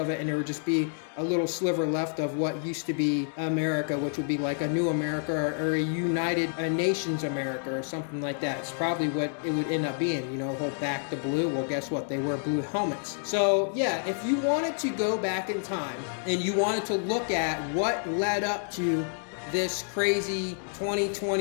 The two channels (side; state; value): right; silent; 59 dB below the other